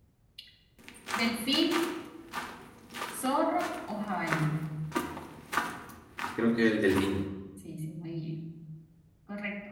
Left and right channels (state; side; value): identical; both; correlation 1.00